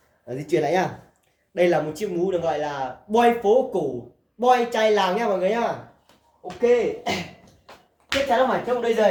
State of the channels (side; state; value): both; identical; correlation 1.00